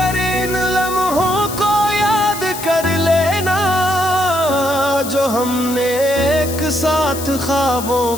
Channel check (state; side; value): noise; left; hiss, 10 dB below the sound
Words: इन लम्हों को याद कर लेना, जो हमने एक साथ ख्वाबों